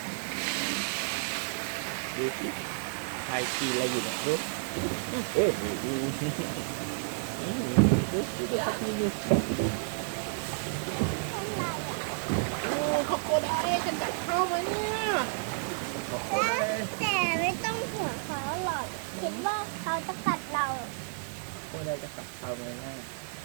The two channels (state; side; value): silent; left; digital silence